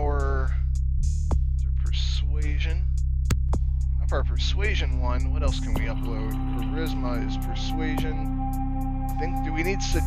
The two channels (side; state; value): both; identical; correlation 1.00